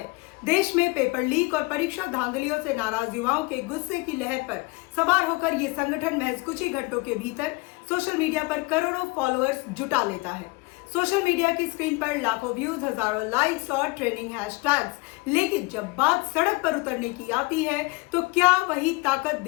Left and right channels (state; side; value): quieter; right; 25.2 dB